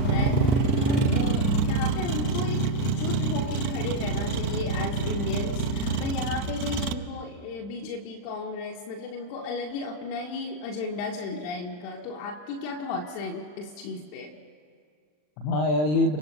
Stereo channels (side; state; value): right; late; 40 ms